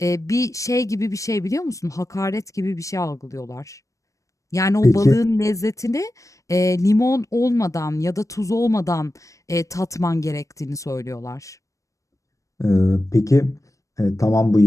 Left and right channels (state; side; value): late; right; 0.16 ms